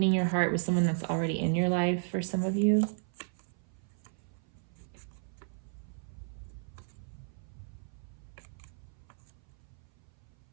your heart with someone that's already in your life for some of you.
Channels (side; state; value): left; silent; 55 dB below the other